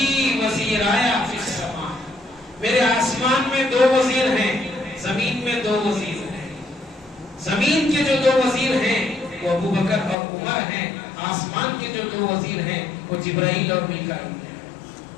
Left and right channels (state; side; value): drops out; right; at 10.2 s